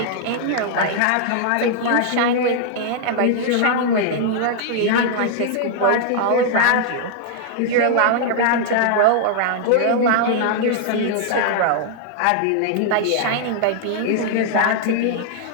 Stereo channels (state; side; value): different; both; correlation -0.01